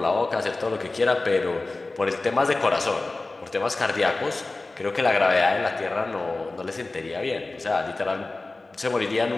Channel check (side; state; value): right; quieter; 3.2 dB